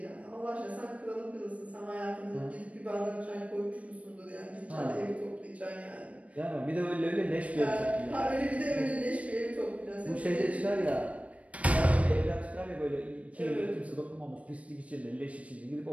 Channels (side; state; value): left; late; 0.065 ms